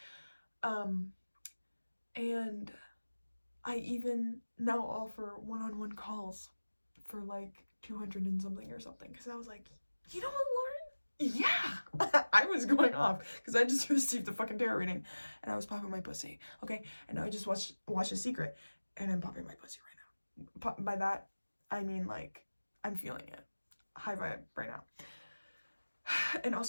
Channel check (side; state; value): both; inverted; correlation -1.00